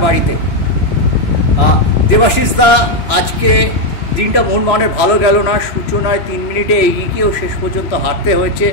বাড়িতে। দেবাশিস দা, আজকে দিনটা মোহনবাগানের ভালো গেল না। সূচনায় 3 মিনিটে এগিয়ে গিয়েও শেষ পর্যন্ত হারতে হয়েছে।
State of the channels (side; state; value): right; late; 2.9 ms